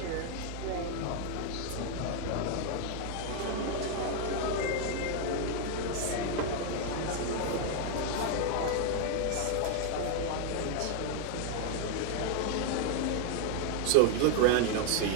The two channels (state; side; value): different; both; correlation 0.00